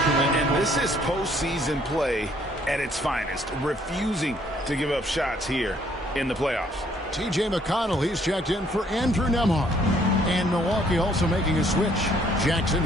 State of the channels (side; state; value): both; normal; correlation 0.64